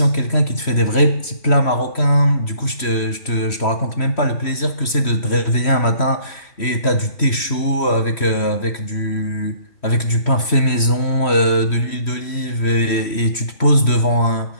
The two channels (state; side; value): late; right; 3.1 ms